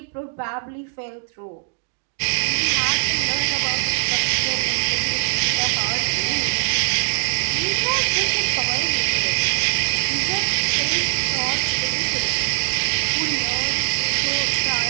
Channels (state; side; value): silent; left; digital silence